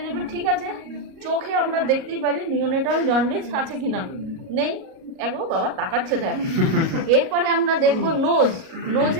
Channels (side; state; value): left; late; 37 ms